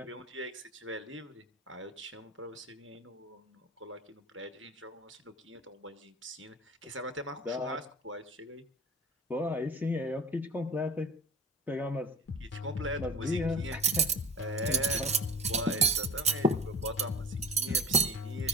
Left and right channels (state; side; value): normal; both; correlation 0.36